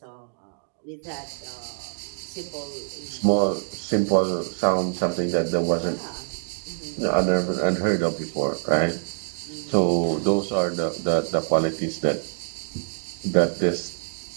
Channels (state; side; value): silent; left; digital silence